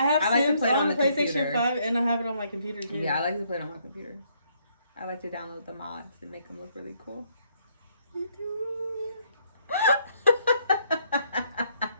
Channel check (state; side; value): inverted; both; correlation -0.70